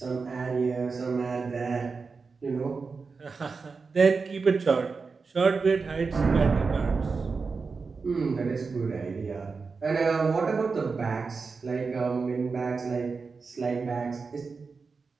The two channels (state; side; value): quieter; left; 4.7 dB